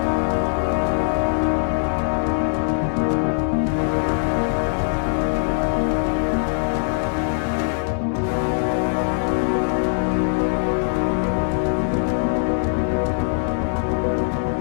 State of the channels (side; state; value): right; silent; digital silence